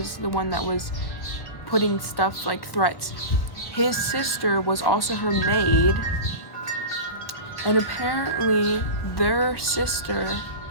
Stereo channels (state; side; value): late; right; 1.0 ms